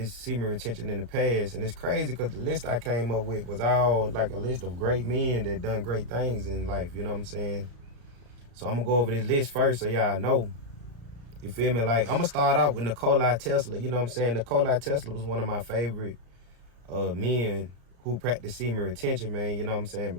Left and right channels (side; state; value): left; late; 34 ms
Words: semen retention in the past. And it's crazy because the list I came up with was all like a list of great men that done great things in life, you know what I'm saying? So I'm gonna go over this list first so y'all know. You feel me? Like, I'm gonna start out with Nikola Tesla, you know what I'm saying? Nikola Tesla was one of my favorite men who practiced semen retention, man, you know what I'm saying?